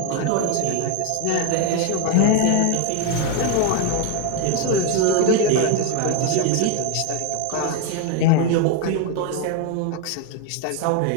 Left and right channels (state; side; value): different; both; correlation 0.01